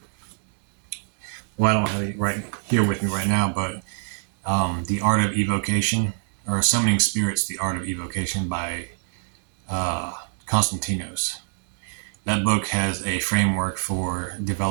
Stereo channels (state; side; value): silent; left; digital silence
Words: I don't have it right here with me right now, but The Art of Evocation, or Summoning Spirits, The Art of Evocation by Constantinos. That book has a framework for